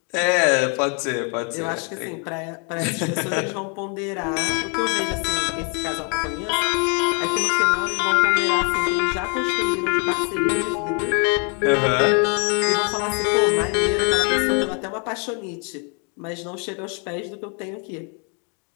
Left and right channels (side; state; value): right; quieter; 37.7 dB